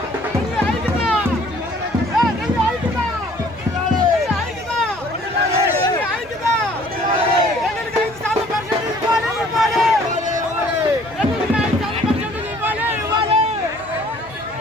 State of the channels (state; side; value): noise; right; hum, 25 dB below the sound